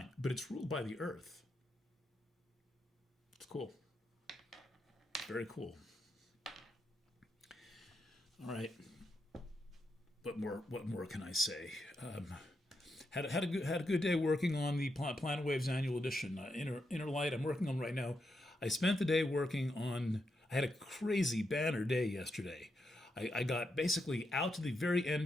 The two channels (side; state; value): both; normal; correlation 0.84